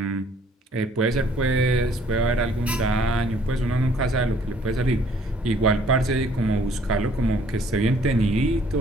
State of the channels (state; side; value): normal; both; correlation 0.60